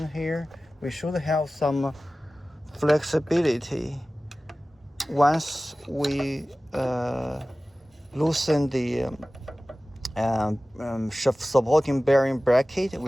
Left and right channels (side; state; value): both; normal; correlation 0.97